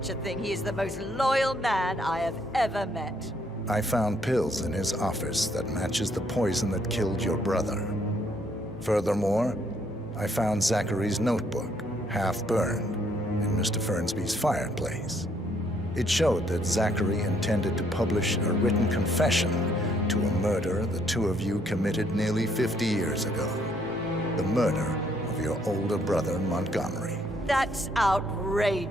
a thing. He is the most loyal man I have ever met. I found pills in his office that matches the poison that killed your brother. Furthermore, I found Zachary's notebook, half burned, in Mr. Fernsby's fireplace. It showed that Zachary intended to publish a written confession to a murder the two of you committed nearly 50 years ago. The murder of your older brother, Montgomery. That's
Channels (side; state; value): both; normal; correlation 0.69